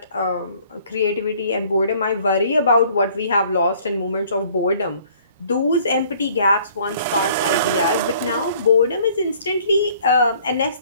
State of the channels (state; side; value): inverted; both; correlation -0.56